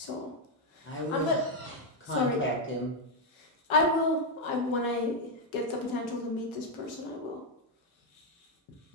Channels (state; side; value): normal; both; correlation 0.02